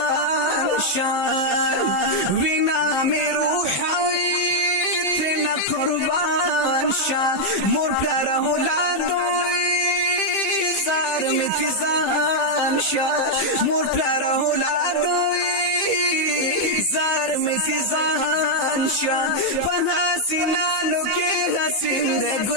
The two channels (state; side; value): late; right; 15 ms